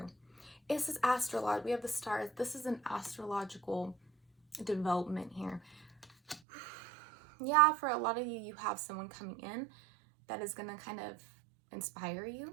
This is astrological. We have the stars. This is an astrological development here. Yeah, for a lot of you, you have someone coming in that is going to kind of inspire you.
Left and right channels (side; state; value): left; drops out; at 6.4 s